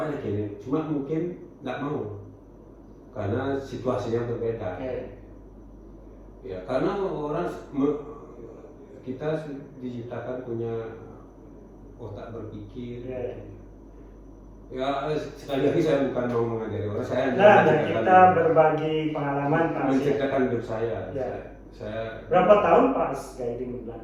aja gini, cuma mungkin nggak mau karena situasinya berbeda. Ya karena kita diciptakan punya otak berpikir. Ya sekali lagi saya bukan mau mengajari orang, saya kita berbagi pengalaman menceritakan hidup saya. saya Berapa tahun pas guiding di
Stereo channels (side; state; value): both; identical; correlation 1.00